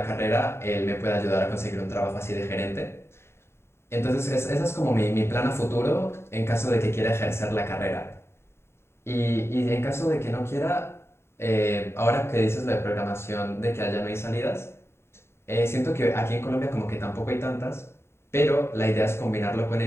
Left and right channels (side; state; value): right; late; 0.12 ms